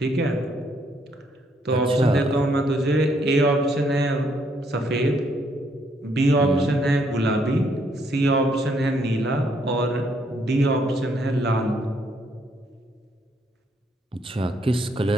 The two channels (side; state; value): both; normal; correlation 0.71